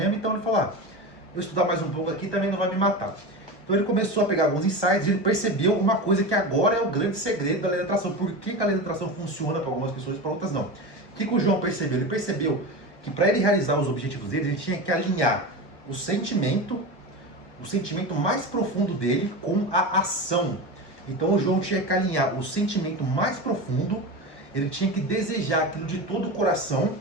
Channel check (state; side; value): late; right; 1.0 ms